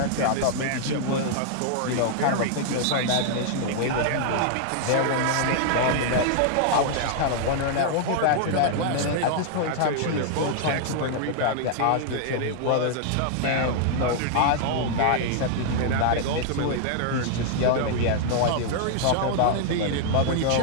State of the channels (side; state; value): both; different; correlation -0.01